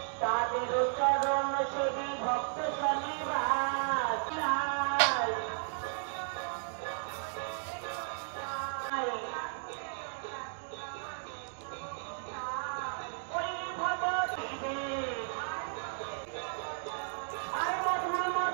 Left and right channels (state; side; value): silent; left; digital silence